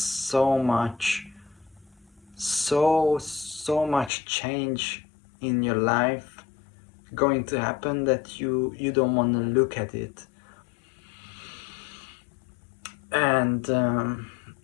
much change in your life going to happen that you don't want to look at it. And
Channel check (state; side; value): drops out; right; at 4.1 s